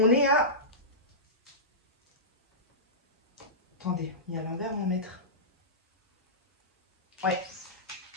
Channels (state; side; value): normal; both; correlation -0.17